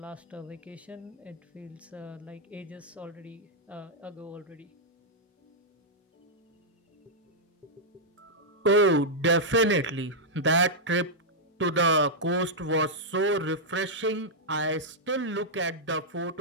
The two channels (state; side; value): normal; both; correlation -0.07